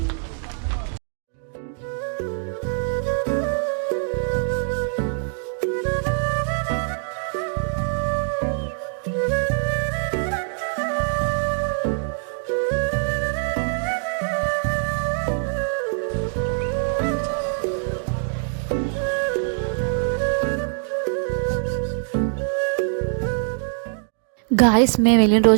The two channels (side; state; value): left; silent; 63 dB below the other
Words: గాయస్, మేము వెళ్ళిన